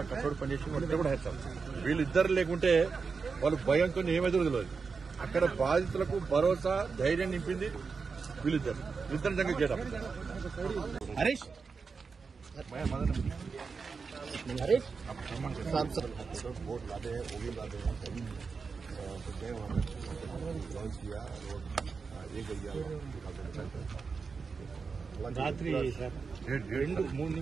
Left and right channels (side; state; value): left; quieter; 5.0 dB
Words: కష్టపడి పనిచేసి వాళ్ళిద్దరు కూడా హ్యాట్స్ ఆఫ్. వీళ్ళిద్దరు లేకుంటే వాళ్ళు భయంతో ఏమైతే తెలియదు. అక్కడ బాధితులకు భరోసా, ధైర్యం నింపింది వీళ్ళిద్దరు నిజంగా చేయడం. हरीश वोट लादे हैं, वो भी लादे हैं, तो गए वहाँ लॉन्च किया और ये गया रात्रि सर 2-3